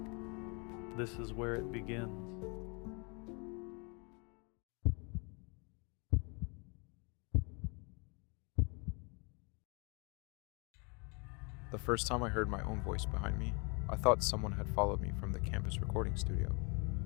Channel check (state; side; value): quieter; right; 32.5 dB